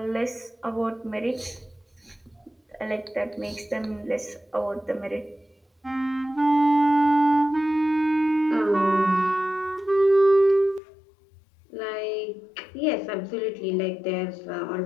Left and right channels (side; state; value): right; drops out; at 10.8 s